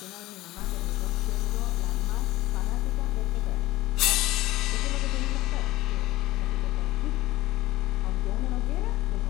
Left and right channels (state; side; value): quieter; right; 17.3 dB